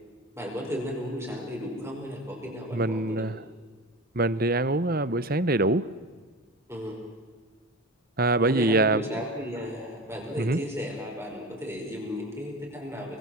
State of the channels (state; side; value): normal; both; correlation 0.30